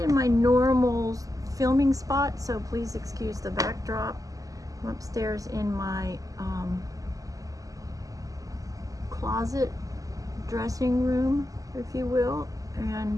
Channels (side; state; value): left; late; 0.17 ms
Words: my normal filming spot, so please excuse the backdrop. I'm upstairs in my closet dressing room, if you will,